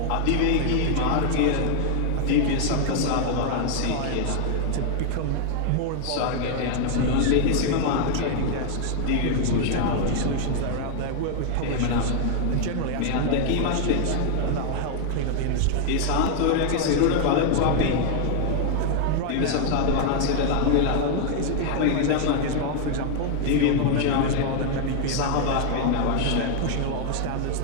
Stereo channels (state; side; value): different; both; correlation 0.00